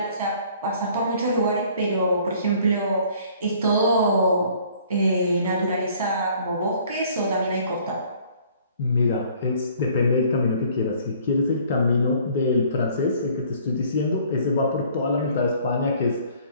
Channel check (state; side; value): inverted; both; correlation -0.56